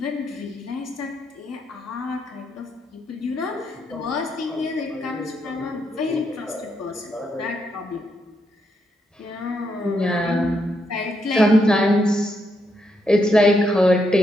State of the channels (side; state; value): both; normal; correlation 0.79